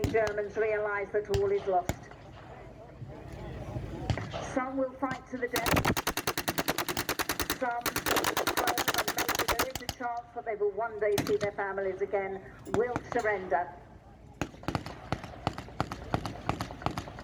Germans realise that all is lost. Some will fight to the death. Some will prone, and maybe there is a chance that they will one day see their families again, will surrender.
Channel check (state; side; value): identical; both; correlation 1.00